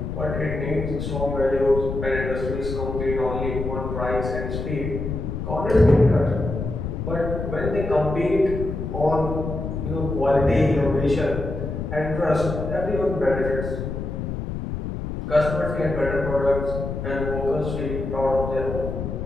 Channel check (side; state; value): left; noise; rumble, 5 dB below the sound